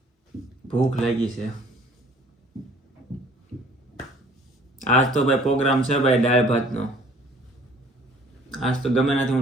ભૂખ લાગી છે. આજ તો ભાઈ પ્રોગ્રામ છે ભાઈ દાળ ભાતનો. આજ તો ગમે નથી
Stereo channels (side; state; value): both; normal; correlation 0.55